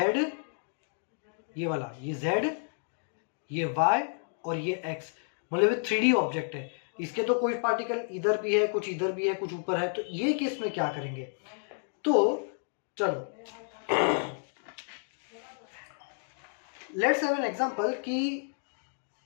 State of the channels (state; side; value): silent; right; 57 dB below the other